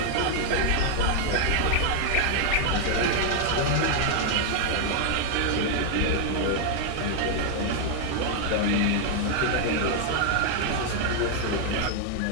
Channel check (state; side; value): different; both; correlation 0.00